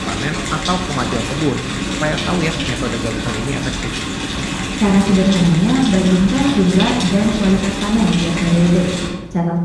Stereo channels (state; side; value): identical; both; correlation 1.00